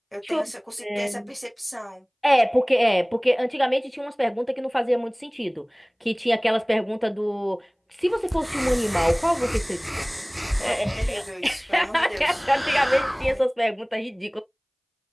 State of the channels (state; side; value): identical; both; correlation 1.00